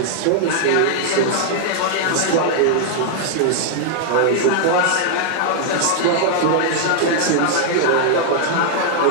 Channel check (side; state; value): both; different; correlation -0.01